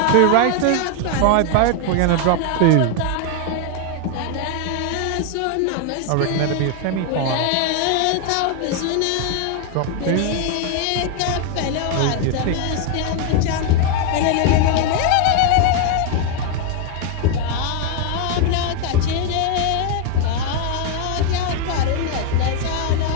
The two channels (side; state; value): both; different; correlation 0.01